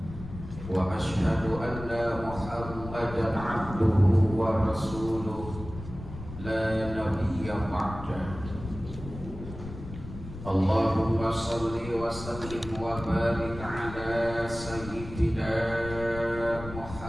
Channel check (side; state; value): left; noise; rumble, 12 dB below the sound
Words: Wa ashhadu anna Muhammadan abduhu wa rasuluh la nabiyya ba'dah. Allahumma salli wa sallim wa barik ala sayyidina